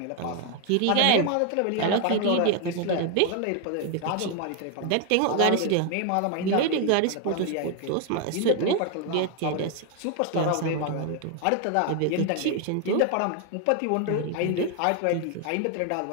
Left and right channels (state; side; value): different; both; correlation 0.01